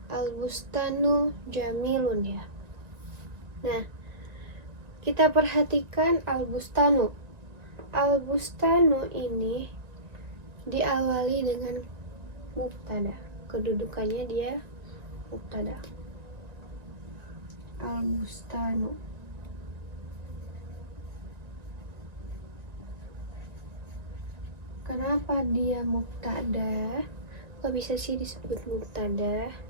Al-bustanu jamilun ya. Nah, kita perhatikan al-bustanu. Al-bustanu ini diawali dengan mubtada. Kedudukannya dia mubtada. Al-bustanu. Kenapa dia mubtada? Kok bisa sih disebut mubtada?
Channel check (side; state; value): left; late; 1.9 ms